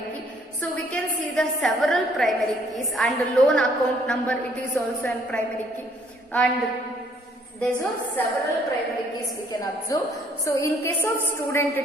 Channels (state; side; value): normal; both; correlation 0.64